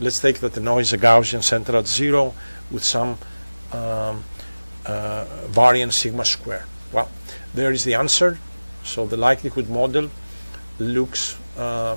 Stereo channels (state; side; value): inverted; both; correlation -1.00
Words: the noise is a Gaussian centered at 0 with some variance sigma square. Well, there is the answer. So the likelihood model looks